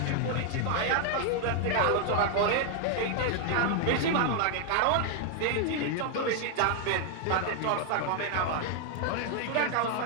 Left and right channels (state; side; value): different; both; correlation 0.00